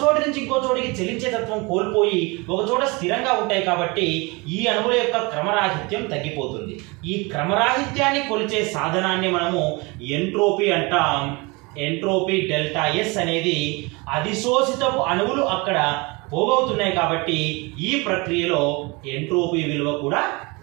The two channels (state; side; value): quieter; left; 26.7 dB